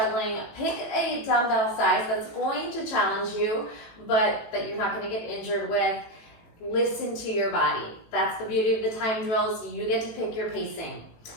Pick a dumbbell size that's going to challenge you, but that you're not going to get injured with. Listen to your body. That's the beauty of the time drills. You get to pick your pacing.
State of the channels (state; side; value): late; right; 18 ms